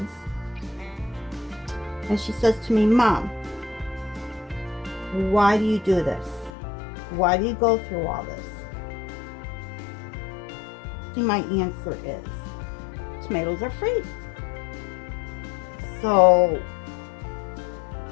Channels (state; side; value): drops out; right; at 6.5 s